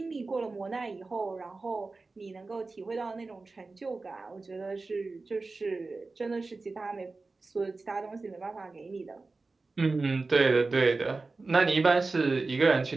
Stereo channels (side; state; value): left; quieter; 3.7 dB